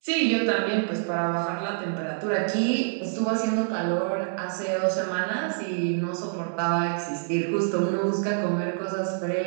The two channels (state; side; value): silent; left; digital silence